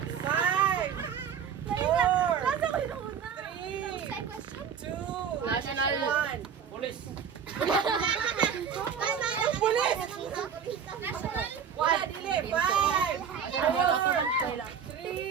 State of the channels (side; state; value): left; quieter; 7.4 dB